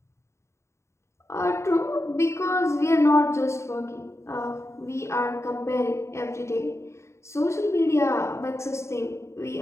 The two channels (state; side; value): late; right; 0.14 ms